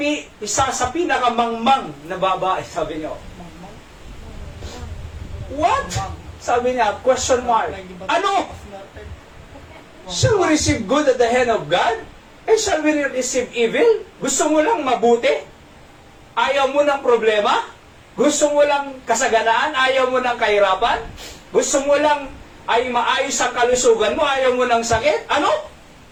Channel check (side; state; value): both; identical; correlation 1.00